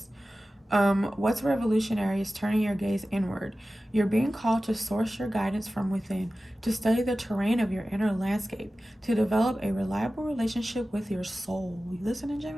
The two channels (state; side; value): normal; both; correlation 0.95